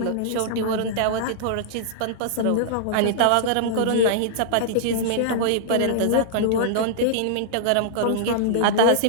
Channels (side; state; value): both; different; correlation -0.02